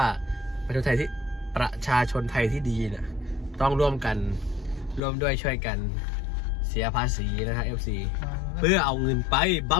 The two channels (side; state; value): right; drops out; at 5.0 s